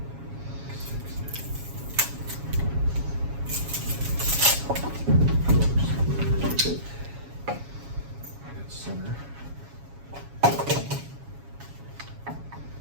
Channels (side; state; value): left; late; 7.2 ms